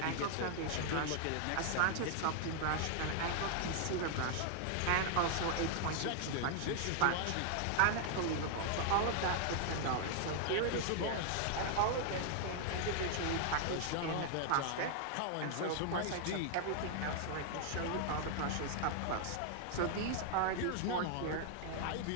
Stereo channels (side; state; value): both; different; correlation 0.00